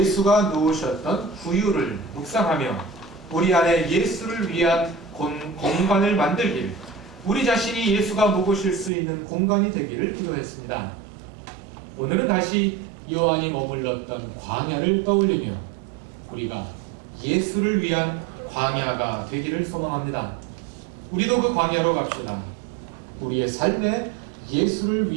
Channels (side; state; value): left; drops out; at 8.9 s